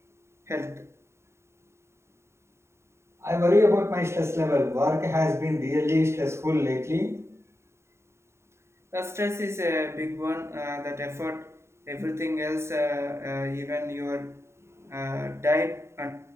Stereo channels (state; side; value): late; left; 0.13 ms